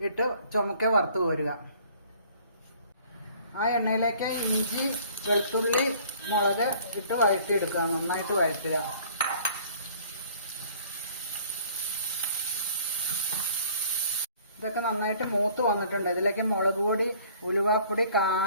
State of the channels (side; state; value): both; inverted; correlation -0.54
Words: ഇട്ട് ചുമക്കെ വറുത്ത് കോരുക. ആ എണ്ണയിലേക്ക് ഇഞ്ചി, വെളുത്തുള്ളി, മുളക് ഇട്ട് വഴറ്റിയെടുക്കുക. നന്നായിട്ട് വഴറ്റുക. ഇതൊക്കെ നന്നായിട്ട് മൂത്ത് വന്നിട്ടുണ്ട്. ഇതിലേക്ക് മുളക് പൊടി, ഉലുവാപ്പൊടി,